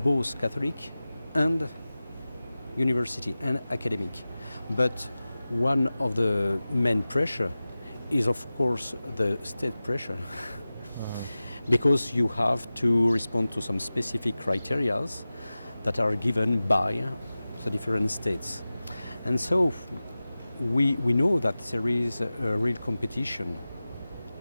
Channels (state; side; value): inverted; both; correlation -0.96